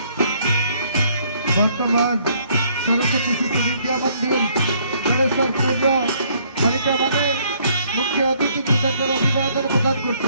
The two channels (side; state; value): both; inverted; correlation -0.65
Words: বর্তমান সরস্বতী শিশু বিদ্যা মন্দির জলেশ্বরপুর বালিকা ভবনে মুখ্য অতিথি কৃতজ্ঞ অভিবাদন প্রদান